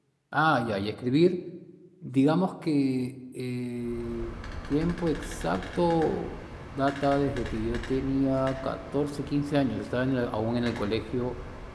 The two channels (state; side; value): identical; both; correlation 1.00